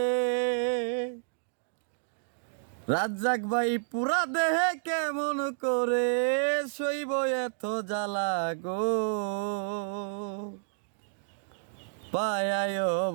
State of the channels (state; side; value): silent; left; digital silence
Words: রাজ্জাক ভাই পুরা দেহে কেমন করে সইব এত জ্বালা গো পায়ায়